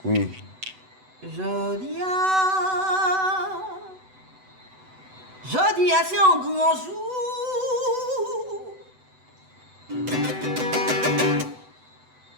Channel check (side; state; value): left; late; 7.9 ms